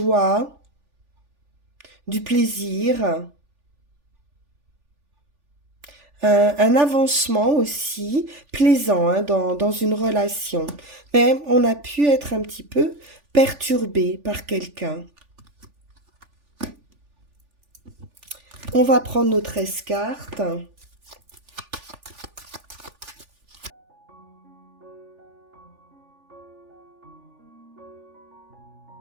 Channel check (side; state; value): left; late; 3.4 ms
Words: du plaisir, un avancement aussi plaisant, hein, dans une relation. Mais on a pu être un petit peu perturbé par quelqu'un. On va prendre nos 13 cartes.